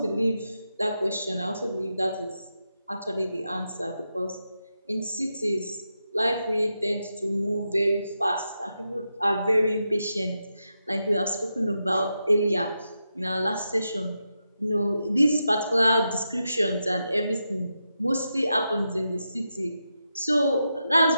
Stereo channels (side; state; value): both; inverted; correlation -0.87